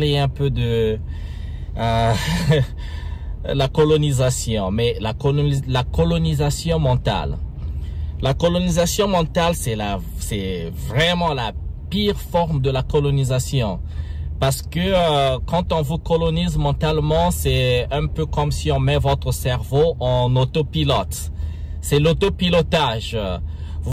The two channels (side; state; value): both; identical; correlation 1.00